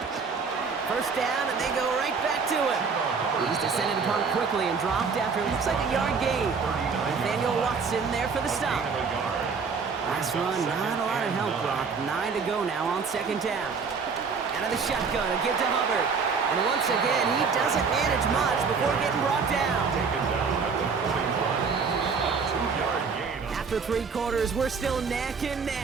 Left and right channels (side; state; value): left; quieter; 5.3 dB